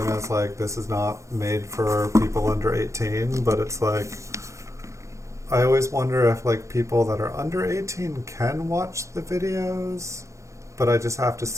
as like this is not made for people under 18, but it's like I always wonder if like people that are under 18 can watch the videos, but I just have to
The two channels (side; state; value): left; late; 0.15 ms